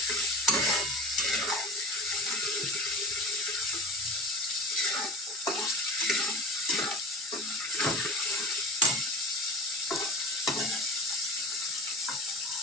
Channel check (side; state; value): both; normal; correlation 0.35